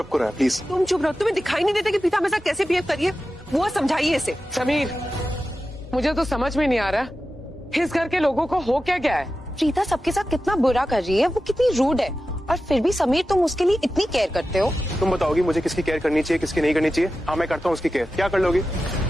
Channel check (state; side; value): normal; both; correlation 0.93